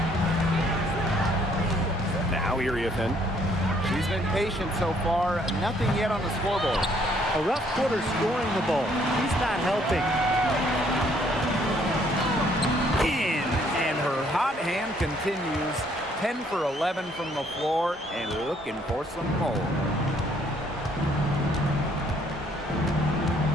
Now Iriefin. She's been patient so far. Nothing yet on the scoreboard. A rough quarter scoring the ball. He's not helping. In, and her hot hand continues. 10 for 11 from the floor and looking for some more.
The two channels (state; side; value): normal; both; correlation 0.65